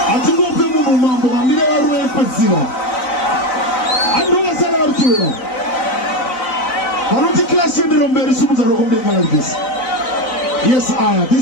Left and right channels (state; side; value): late; right; 4.0 ms